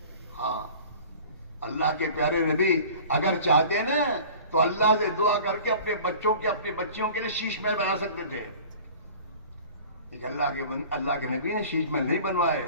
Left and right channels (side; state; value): both; inverted; correlation -0.43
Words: ہاں، اللہ کے پیارے نبی اگر چاہتے نا تو اللہ سے دعا کر کے اپنے بچوں کے اپنی بچیوں کے لیے شیش محل بنا سکتے تھے، لیکن اللہ کے نبی نے شیش محل نہیں بنوائے۔